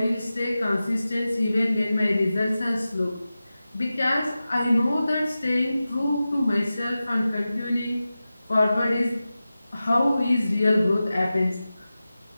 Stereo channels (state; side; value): inverted; both; correlation -0.94